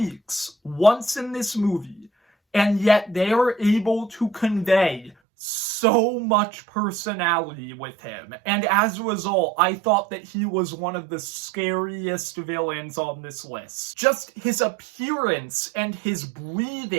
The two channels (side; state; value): left; drops out; at 5.2 s